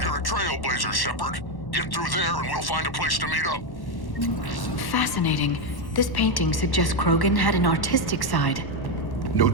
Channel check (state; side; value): late; right; 1.1 ms